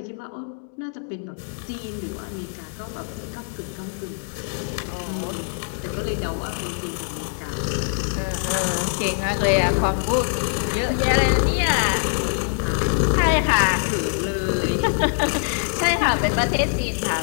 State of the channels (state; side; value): silent; right; digital silence